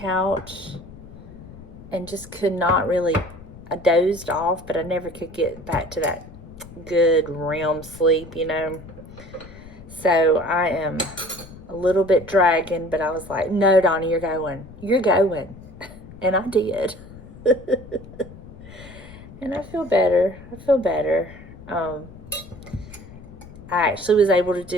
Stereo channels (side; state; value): left; noise; rumble, 17 dB below the sound